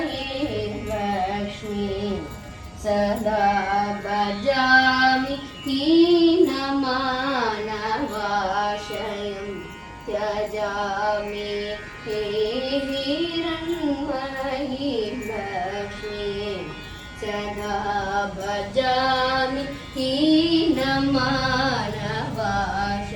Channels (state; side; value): identical; both; correlation 1.00